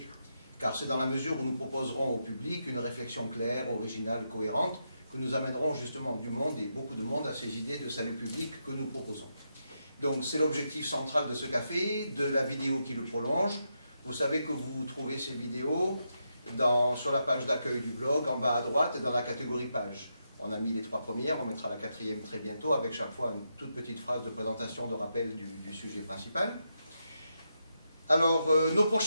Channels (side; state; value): both; inverted; correlation -0.84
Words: Car c'est dans la mesure où nous proposerons au public une réflexion claire, originale, cohérente, que nous amènerons justement du monde et beaucoup de monde à ces idées de salut public que nous proposons. Donc c'est l'objectif central de ce café, de la vidéo qui le prolonge. Vous savez que vous trouvez ces vidéos sur la page d'accueil du blog, en bas à droite, et dans la catégorie page. On a mis les 3 premières, on mettra la 4e très bientôt, avec chaque fois une toute petite phrase de présentation, de rappel du sujet principal. Alors, nos